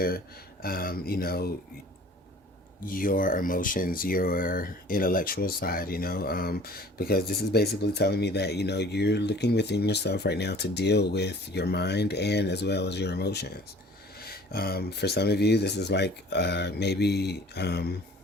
your emotions, your intellectual side, because this is basically telling me that, you're looking within yourself right now to deal with your mind and as well as your emotions. For some of you, this is like, maybe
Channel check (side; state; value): both; normal; correlation 0.49